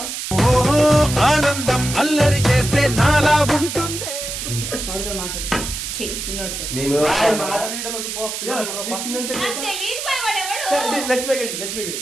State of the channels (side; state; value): right; noise; hiss, 6 dB below the sound